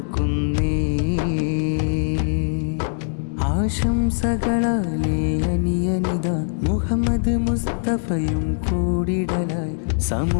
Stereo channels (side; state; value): right; silent; digital silence